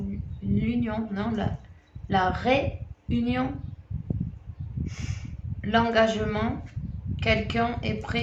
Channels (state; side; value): identical; both; correlation 1.00